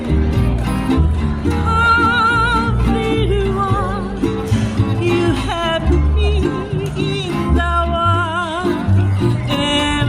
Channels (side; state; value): both; identical; correlation 1.00